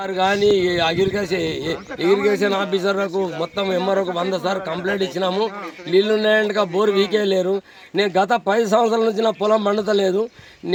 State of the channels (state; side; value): identical; both; correlation 1.00